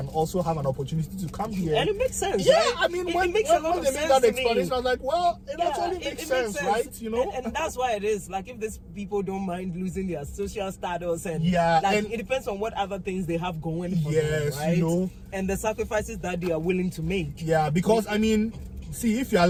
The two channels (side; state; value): both; identical; correlation 1.00